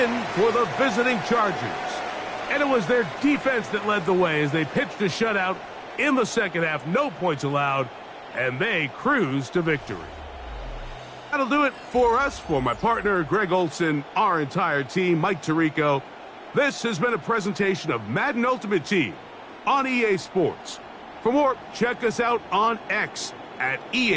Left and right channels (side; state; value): both; identical; correlation 1.00